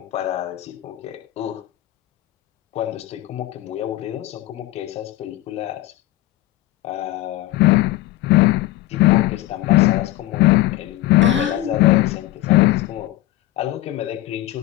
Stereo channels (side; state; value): right; quieter; 16.3 dB